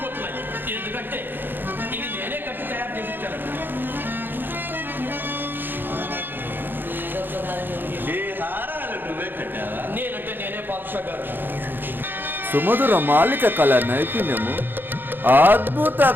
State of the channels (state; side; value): late; left; 0.095 ms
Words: ఎందుకంటే ఇది నేనే కట్టి తయారు చేసి ఇచ్చానండి. ఈ హారాలు నువ్వే కట్టావా? నేనంటే నేనే పాదుషగారు. సుమధుర మాలిక కళ నైపుణ్యము అద్భుత